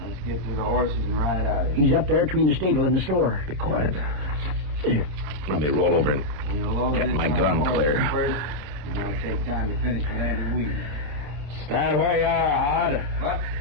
get to the horses and ride out of here. He's up there between the stable and the store. Be quiet. Here, let me roll over and We'll load get this my on gun the horse clear. First, and that'll take time to finish with Andy Weed. Stand where you are, Hod. What?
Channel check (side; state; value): left; late; 27 ms